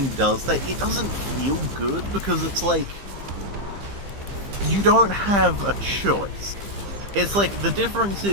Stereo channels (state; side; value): late; left; 15 ms